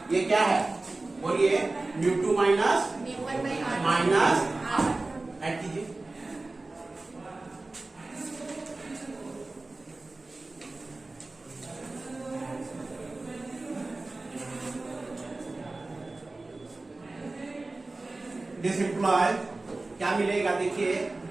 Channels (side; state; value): left; quieter; 3.2 dB